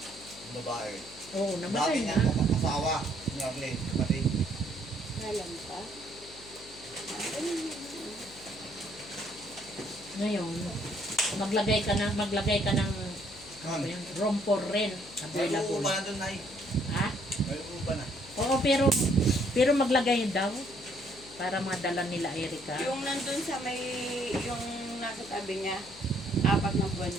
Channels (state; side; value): noise; left; hum, 19 dB below the sound